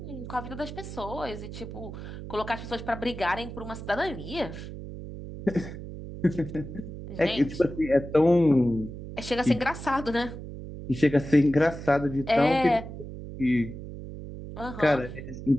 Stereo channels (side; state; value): right; noise; hum, 10 dB below the sound